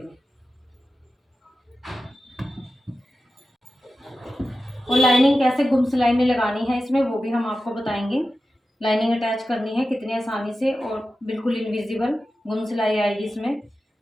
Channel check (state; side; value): normal; both; correlation 0.93